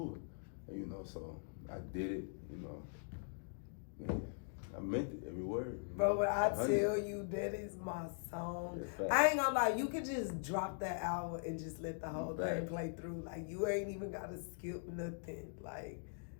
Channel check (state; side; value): silent; right; digital silence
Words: it. And, you know, so I did it, you know. Man, I meant it, every word. Bro, but I tell you, that is my song. I ain't gonna lie, you could just drop that album and just let the whole thing play through. Like, you ain't even gotta skip nothing. Like,